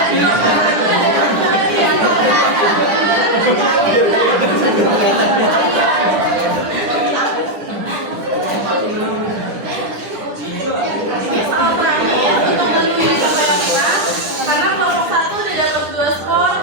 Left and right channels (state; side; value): late; left; 10 ms